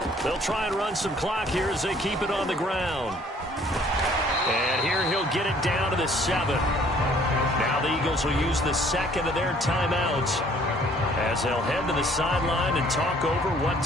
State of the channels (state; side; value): normal; both; correlation 0.58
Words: They'll try and run some clock here as they keep it on the ground. And here he'll get it down to the 7. Now the Eagles will use the 2nd of their timeouts as they'll head to the sideline and talk over what